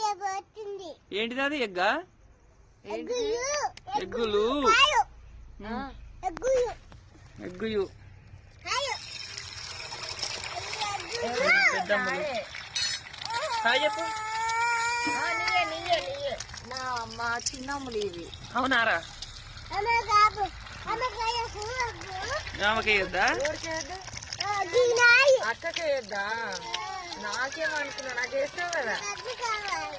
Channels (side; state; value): both; identical; correlation 1.00